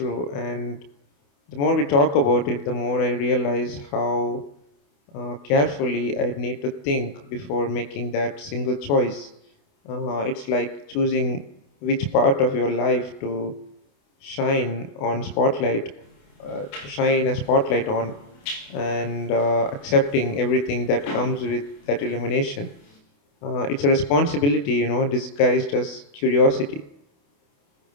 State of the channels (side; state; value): right; late; 28 ms